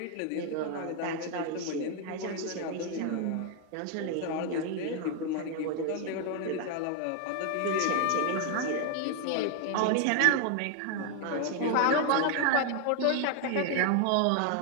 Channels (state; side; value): different; both; correlation 0.01